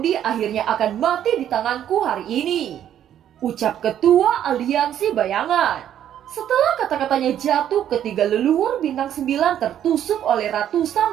akhirnya akan mati di tanganku hari ini, ucap ketua aliansi bayangan. Setelah kata-katanya jatuh, ketiga leluhur bintang 9 tertusuk oleh ratusan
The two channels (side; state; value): left; quieter; 10.5 dB